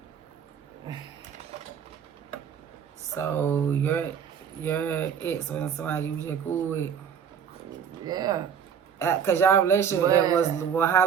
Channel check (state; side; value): quieter; left; 7.8 dB